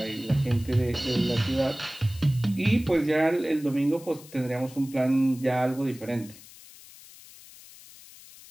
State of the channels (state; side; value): noise; left; hiss, 20 dB below the sound